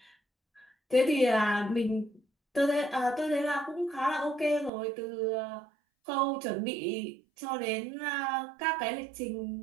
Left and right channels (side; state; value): left; drops out; at 4.7 s